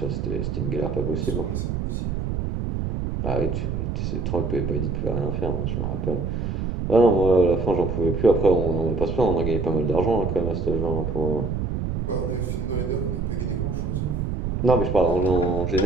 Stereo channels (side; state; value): right; noise; rumble, 2 dB below the sound